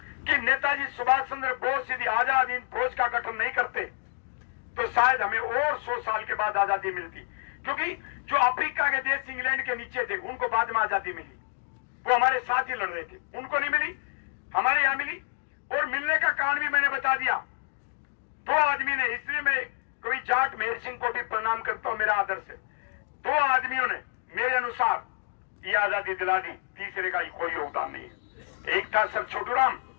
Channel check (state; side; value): silent; right; digital silence